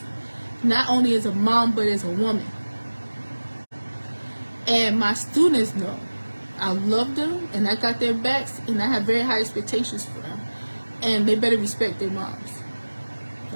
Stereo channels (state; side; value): inverted; both; correlation -1.00